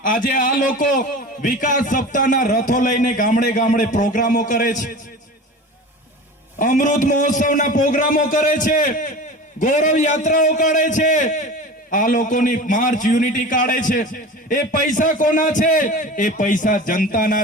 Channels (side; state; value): both; normal; correlation 0.34